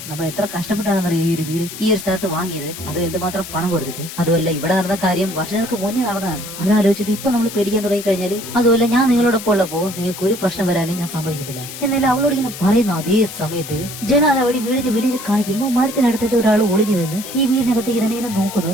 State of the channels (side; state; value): left; noise; hiss, 11 dB below the sound